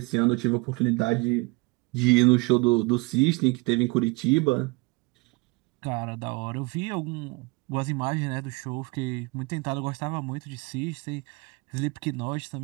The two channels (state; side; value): quieter; left; 26.6 dB